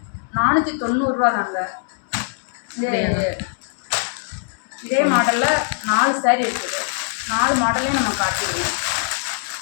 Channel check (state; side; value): silent; right; digital silence